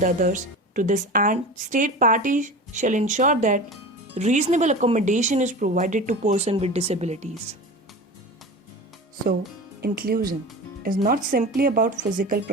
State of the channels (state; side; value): normal; both; correlation 0.32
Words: others. To this end, state parties shall ensure that reasonable accommodation is provided to persons with disabilities. So, inclusion is not simply about physical